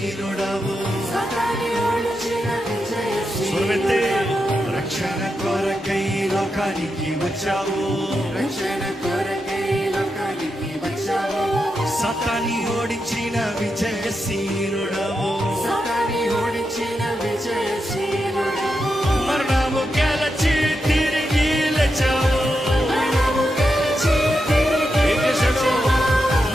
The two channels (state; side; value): normal; both; correlation 0.86